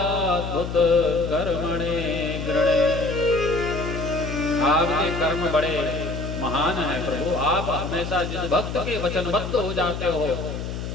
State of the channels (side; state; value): left; noise; hum, 6 dB below the sound